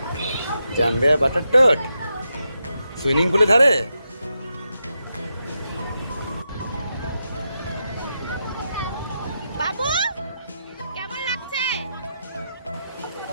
জাম্বে বাটার টোট সুইমিং পুলে ধারে বাবু কেমন লাগছে?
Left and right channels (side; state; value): both; inverted; correlation -0.85